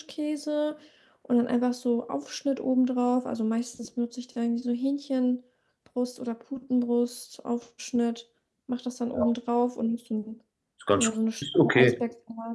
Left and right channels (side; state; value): both; identical; correlation 1.00